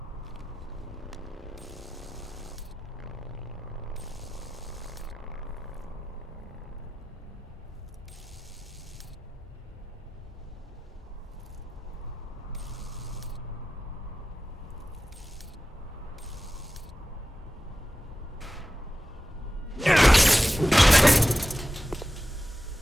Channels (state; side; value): normal; both; correlation 0.93